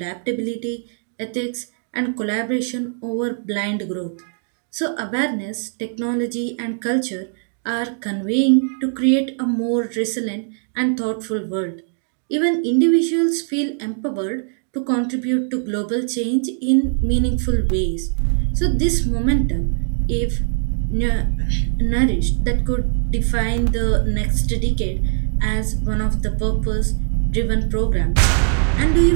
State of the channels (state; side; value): silent; left; digital silence